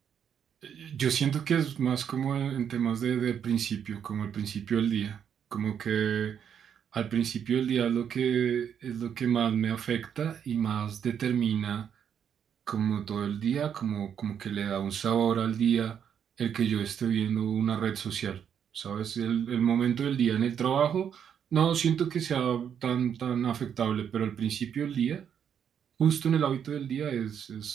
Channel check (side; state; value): left; quieter; 8.3 dB